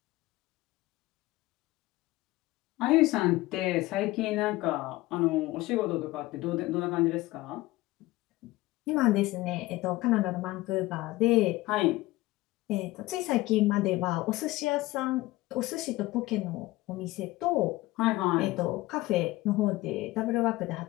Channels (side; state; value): right; quieter; 19.0 dB